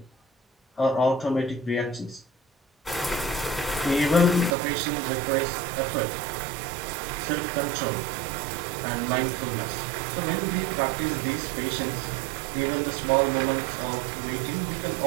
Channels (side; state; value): left; drops out; at 4.5 s